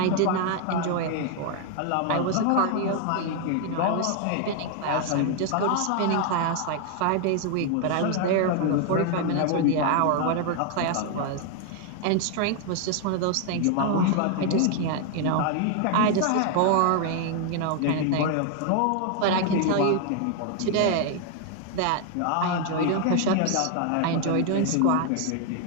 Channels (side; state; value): both; different; correlation 0.00